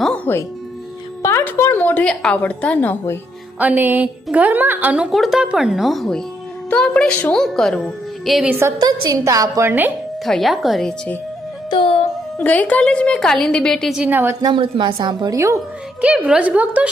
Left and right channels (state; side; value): normal; both; correlation 0.75